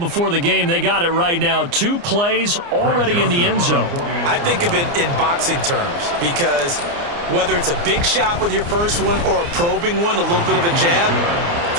the game, they got it right now. 2 plays already in the end zone. I think of it in boxing terms because whether it's a big shot with your first one or a probing one, a little bit of a jab,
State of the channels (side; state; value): left; late; 29 ms